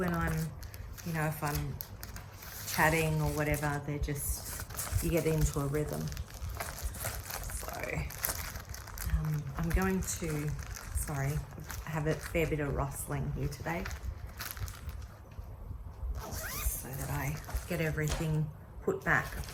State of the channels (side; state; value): both; identical; correlation 1.00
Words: I'm, you know, if I'm chatting or whatever, they're just, you get into a rhythm. So I'm going to, sorry, I have a fair bit of rustling here today so that I get everything put back.